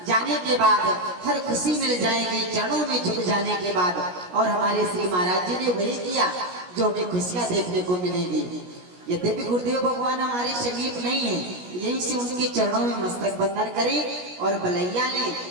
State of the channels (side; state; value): left; late; 17 ms